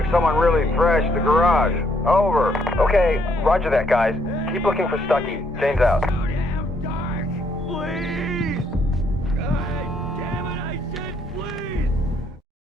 someone really thrashed the garage. Over. Okay, roger that, guys. Keep looking for Stucky. James out.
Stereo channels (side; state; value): both; normal; correlation 0.70